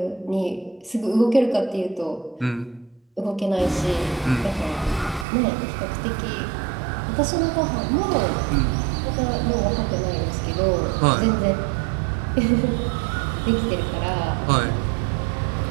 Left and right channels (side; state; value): left; drops out; at 5.2 s